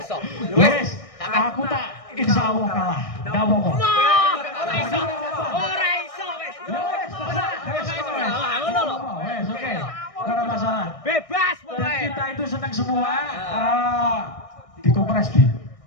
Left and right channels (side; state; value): right; late; 1.6 ms